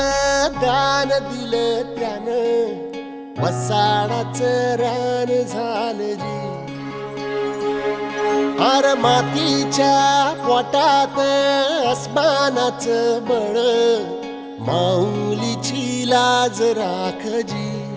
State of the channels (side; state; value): both; identical; correlation 1.00